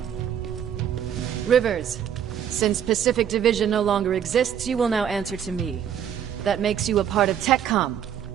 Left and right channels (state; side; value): quieter; left; 9.1 dB